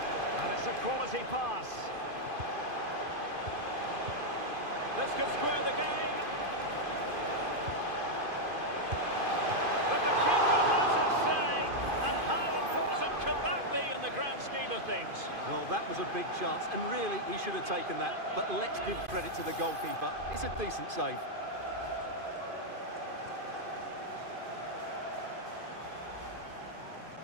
And it's a quality pass. This could square the game. But the keeper has his say. And how important can that be in the grand scheme of things? Well, that was a big chance, and really, he should have taken that. But let's give credit to the goalkeeper. It's a decent save.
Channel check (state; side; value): late; left; 2.5 ms